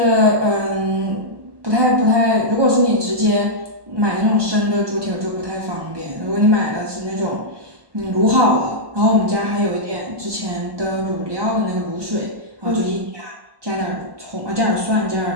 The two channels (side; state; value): left; late; 1.1 ms